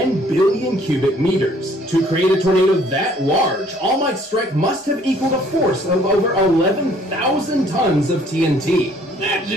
billion cubic meters. To create a tornado that large, All Might's strike must have equaled a force of over 11,000 tons of TNT. That's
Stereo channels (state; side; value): normal; both; correlation 0.59